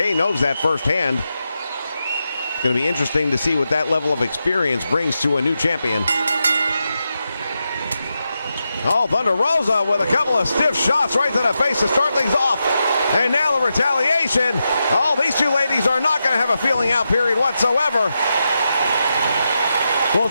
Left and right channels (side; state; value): both; inverted; correlation -0.88